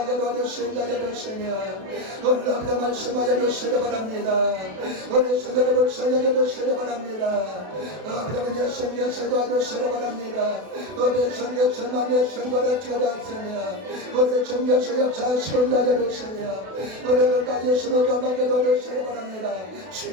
도와주신다 해주시며 오늘 앞대 말씀하여 주시기 바랍니다. 우리 손들을 불쌍하게 주시기 바랍니다. 아버지는 예수님께서 도와주시기 바랍니다. 우리 성교서만의 선거를 찍어놨으며 우리 성교서 역사하시고 나져주시며 우리를 다 예수를 감하게 도와주시기 바랍니다.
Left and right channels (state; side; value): late; left; 32 ms